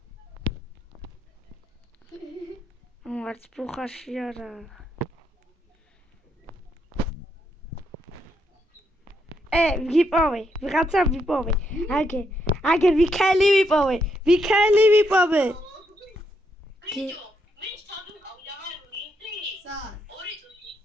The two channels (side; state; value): both; normal; correlation 0.78